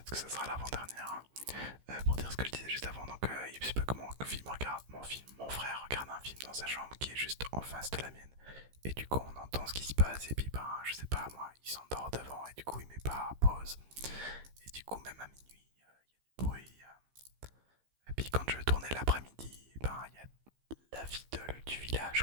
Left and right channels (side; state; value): left; late; 15 ms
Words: que ça sera l'avant-dernière. Hein. Pour dire ce que je disais juste avant, donc il se peut que mon frère regarde un film dans sa chambre qui est juste en face de la mienne. Et du coup, on entend ce qui se passe, et puis ben, je sais pas, moi, il s'endort devant, et du coup, il met pas pause. Et du coup, même à minuit, il y a du bruit. Et puis quand je tournais l'après-midi, ben, il y a la vie du